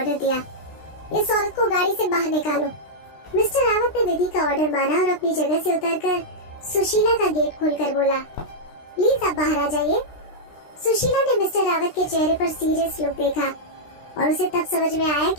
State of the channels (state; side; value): late; right; 16 ms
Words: दिया, इस औरत को गाड़ी से बाहर निकालो। मिस्टर रावत ने विधि का ऑर्डर माना और अपनी जगह से उतरकर सुशीला का गेट खोलकर बोला, प्लीज आप बाहर आ जाइए। सुशीला ने मिस्टर रावत के चेहरे पर सीरियस लुक देखा और उसे तब समझ में आया